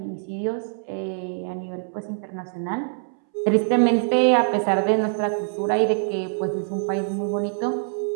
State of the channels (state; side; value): silent; left; 63 dB below the other